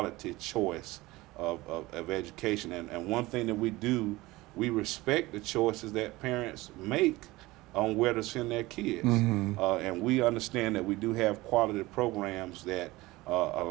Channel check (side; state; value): left; quieter; 19.9 dB